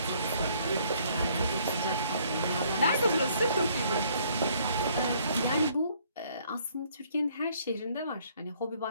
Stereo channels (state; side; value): inverted; both; correlation -0.63